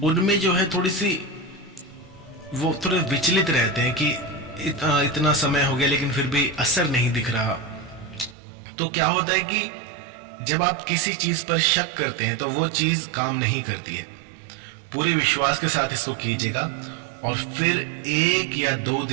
उनमें जो है थोड़ी सी वो थोड़े विचलित रहते हैं कि इतना समय हो गया लेकिन फिर भी असर नहीं दिख रहा। तो क्या होता है कि जब आप किसी चीज पर शक करते हैं तो वो चीज काम नहीं करती है। पूरे विश्वास के साथ इसको कीजिएगा और फिर 1 या 2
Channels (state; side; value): drops out; left; at 8.3 s